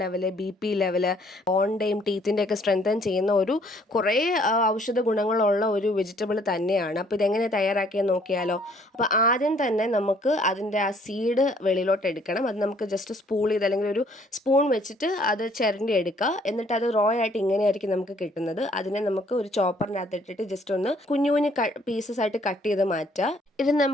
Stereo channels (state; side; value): normal; both; correlation 0.62